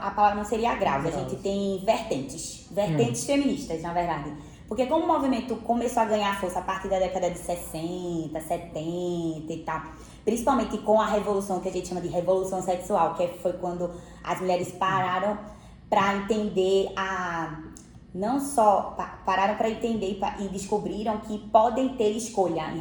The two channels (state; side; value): identical; both; correlation 1.00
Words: palavra não seria graus. A gente tem vertentes. Vertentes feministas, na verdade. Porque como o movimento começou a ganhar força a partir da década de 60, 70 e tal, principalmente com a revolução, que a gente chama de revolução sexual, que foi quando as mulheres pararam para entender não só pararam para entender e descobriram que podem ter escolha em